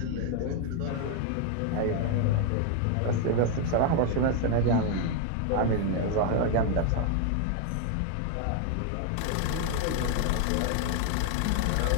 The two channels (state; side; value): different; both; correlation 0.00